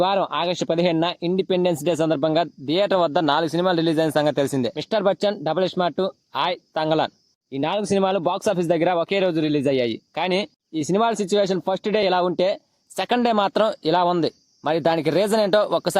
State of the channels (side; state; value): both; identical; correlation 1.00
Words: వారం August 15న independence day సందర్భంగా థియేటర్ వద్ద 4 సినిమాలు రిలీజ్ అయిన సంగతి తెలిసిందే. మిస్టర్ బచ్చన్, డబుల్ స్మార్ట్, ఆయ్, తంగలాన్ ఈ 4 సినిమాలు బాక్సాఫీస్ దగ్గర ఒకే రోజు రిలీజ్ అయ్యాయి. కానీ ఈ సినిమాల సిచ్యువేషన్ ఫస్ట్ డే ఇలా ఉంటే సెకండ్ డే మాత్రం ఇలా ఉంది. మరి దానికి రీజన్ ఏంటో